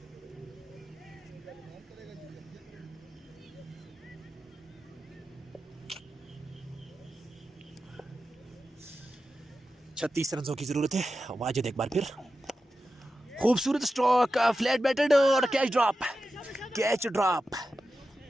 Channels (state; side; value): normal; both; correlation 0.91